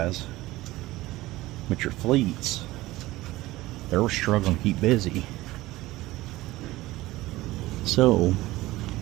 but your fleets, they were struggling to keep busy. So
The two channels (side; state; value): left; quieter; 18.1 dB